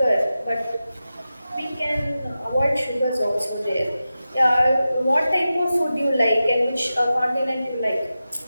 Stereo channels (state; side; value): inverted; both; correlation -0.93